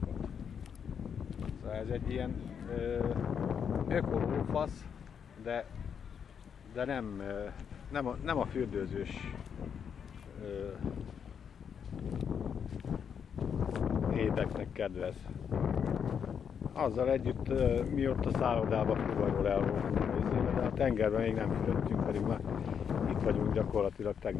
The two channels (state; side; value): quieter; right; 7.4 dB